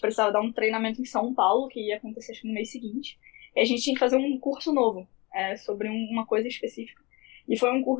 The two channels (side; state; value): right; quieter; 25.4 dB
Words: precisava dar um treinamento em São Paulo, que ia acontecer acho que no mês seguinte. E a gente tinha que fazer um curso novo, sobre uma coisa específica. E foi um